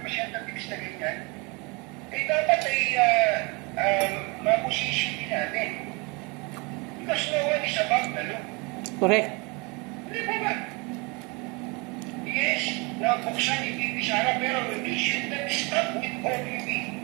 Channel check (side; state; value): left; quieter; 28.9 dB